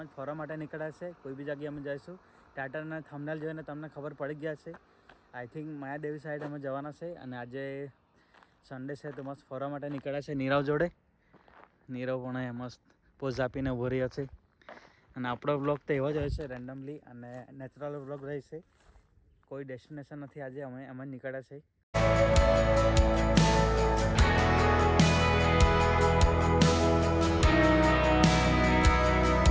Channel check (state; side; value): identical; both; correlation 1.00